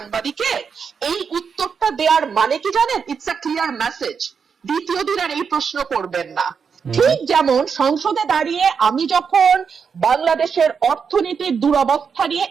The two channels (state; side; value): quieter; left; 6.2 dB